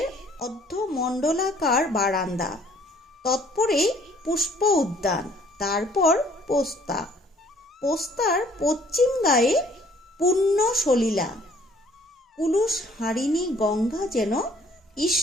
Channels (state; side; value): normal; both; correlation 0.58